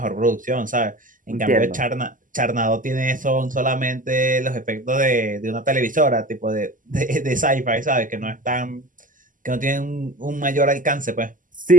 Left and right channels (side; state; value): left; late; 0.38 ms